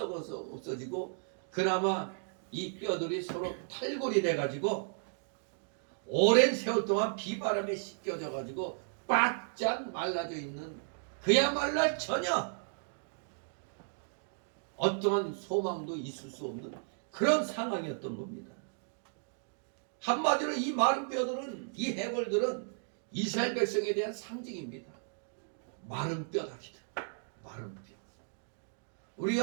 없어지고 그나마 이 뼈들이 서로 탈골이 돼가지고 오랜 세월 동안 비바람에 씻겨져 가지고 바짝 말라져 있는 그야말로 전혀 어떠한 소망도 있을 수 없는 그런 상황이었던 겁니다. 한마디로 이 마른 뼈들은 이 해골들은 이스라엘 백성에 대한 상징입니다. 마른 뼈다기들. 마른 뼈.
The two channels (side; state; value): left; silent; digital silence